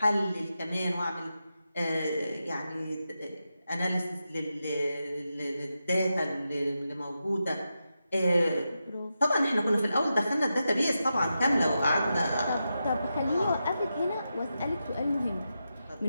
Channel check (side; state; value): both; inverted; correlation -0.88